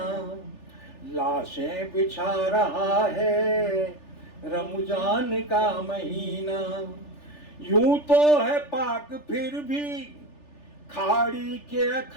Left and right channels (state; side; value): late; right; 3.4 ms